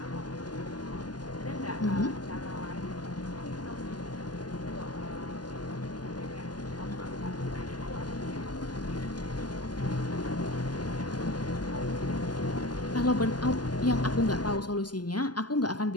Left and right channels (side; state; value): right; late; 0.70 ms